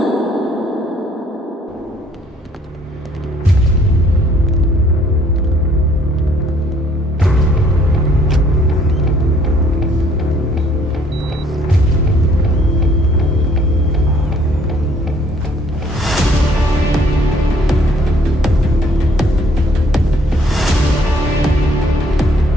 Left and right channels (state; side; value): normal; both; correlation 0.61